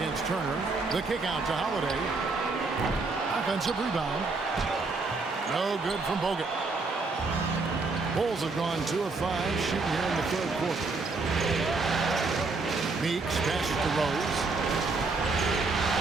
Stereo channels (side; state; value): left; quieter; 3.8 dB